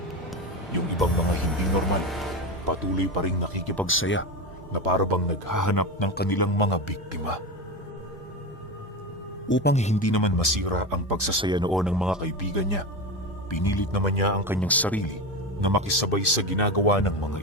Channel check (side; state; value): both; normal; correlation 0.20